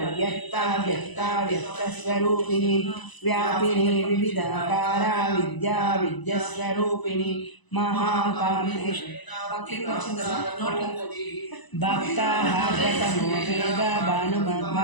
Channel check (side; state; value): right; late; 1.0 ms